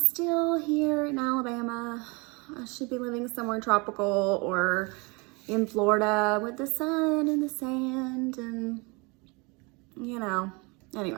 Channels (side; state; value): left; quieter; 28.7 dB